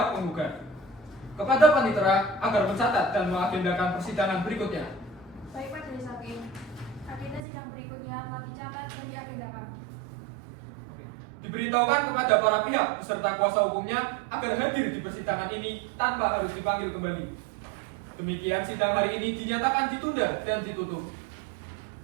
penggugat. Kepada panitera agar mencatat dan mengagendakan persidangan berikutnya. Baik Majelis Hakim. Agenda sidang berikutnya telah dicatat dan diagendakan. Diberitahukan kepada para pihak beserta kuasa hukumnya agar hadir di persidangan ini tanpa harus dipanggil kembali. Demikian sidang hari ini dinyatakan ditunda dan ditutup.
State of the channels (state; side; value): drops out; left; at 7.4 s